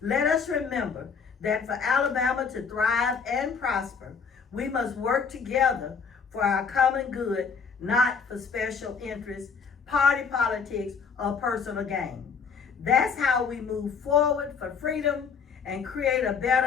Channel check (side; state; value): right; quieter; 5.8 dB